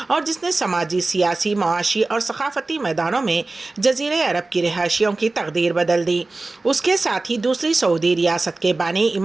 اور جس نے سماجی، سیاسی، معاشی اور ثقافتی میدانوں میں جزیرہ عرب کی رہائشیوں کی تقدیر بدل دی۔ اس کے ساتھ ہی دوسری سعودی ریاست کے بانی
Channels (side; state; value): left; quieter; 3.3 dB